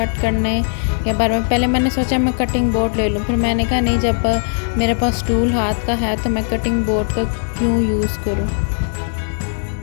करने के बारे में पहले मैंने सोचा मैं कटिंग बोर्ड ले लूँ, फिर मैंने कहा नहीं, जब मेरे पास टूल हाथ का है तो मैं कटिंग बोर्ड का क्यों यूज़ करूँ।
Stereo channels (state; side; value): silent; right; digital silence